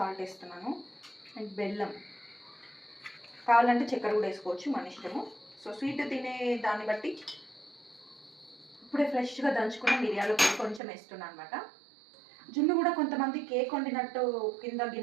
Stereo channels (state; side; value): drops out; left; at 10.8 s